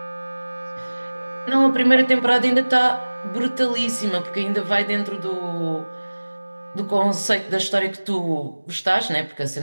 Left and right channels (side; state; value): both; inverted; correlation -1.00